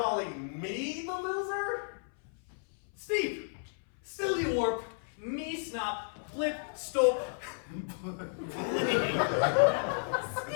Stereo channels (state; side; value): silent; right; 56 dB below the other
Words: me the loser? Steve. Silly warp. Me snop. Blip. Stop. Bling.